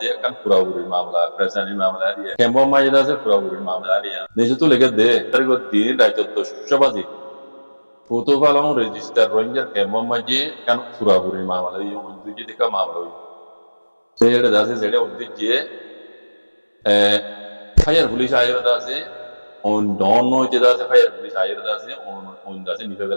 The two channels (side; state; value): both; inverted; correlation -1.00